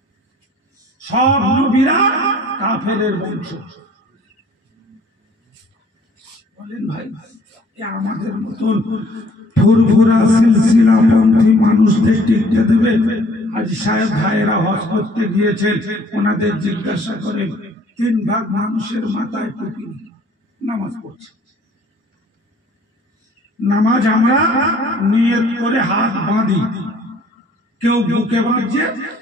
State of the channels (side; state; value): both; normal; correlation 0.56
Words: সব নবীরা কাফেরের বংশ। বলেন ভাই, আমাদের মতন ফুরফুরা সিলসিলা পন্থী মানুষদের টিকতে দেবে? আজ সাহেব ভাইয়েরা হজ করতে গিয়েছেন, ওনাদের জিজ্ঞাসা করেন 3 ভাগ মানুষের মাথায় টুপি নামাজ পড়ছে। নামাজ আমরা নিয়ত করে হাত বাঁধি, কেউ বুকে বাঁধছে,